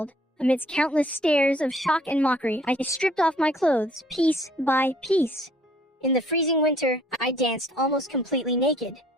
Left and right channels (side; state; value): both; normal; correlation 0.59